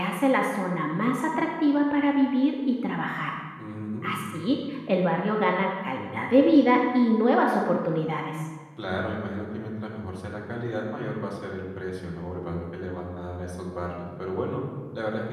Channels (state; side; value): identical; both; correlation 1.00